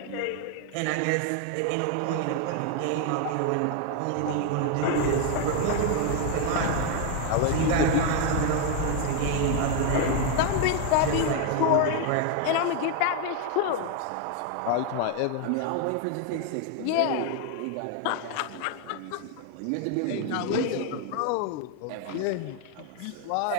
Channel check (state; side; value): different; both; correlation 0.01